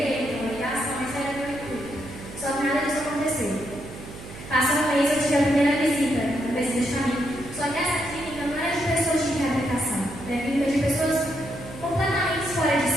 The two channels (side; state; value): right; noise; hum, 14 dB below the sound